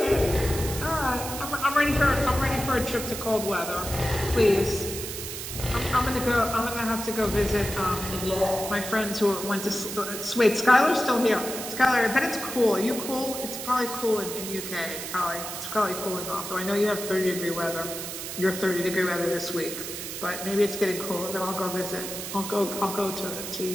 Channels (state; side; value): noise; right; hiss, 7 dB below the sound